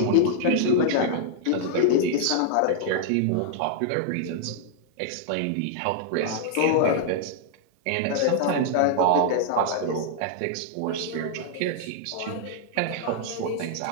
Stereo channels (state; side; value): different; both; correlation -0.01